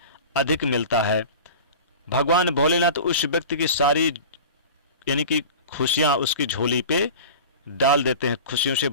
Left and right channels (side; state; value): both; inverted; correlation -0.35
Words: अधिक मिलता है। भगवान भोलेनाथ उस व्यक्ति की सारी यानी कि खुशियां उसकी झोली पे डाल देते हैं, खुशियों से